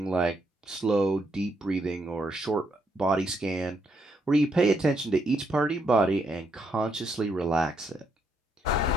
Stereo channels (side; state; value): both; normal; correlation 0.76